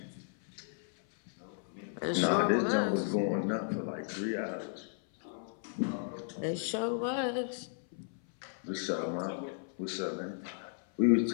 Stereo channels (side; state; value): right; silent; 55 dB below the other